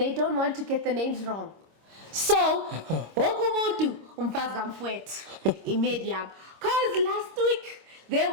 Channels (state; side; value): late; left; 26 ms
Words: don't want to get the names wrong. So, wokumuntu umfazi kamfowethu iMedium. Cause last week there